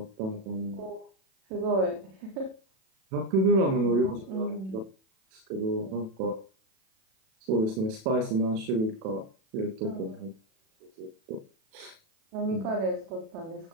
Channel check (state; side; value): late; left; 37 ms